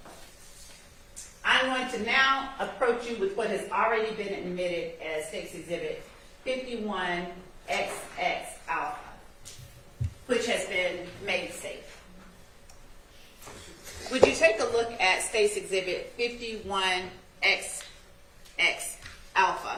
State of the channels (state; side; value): identical; both; correlation 1.00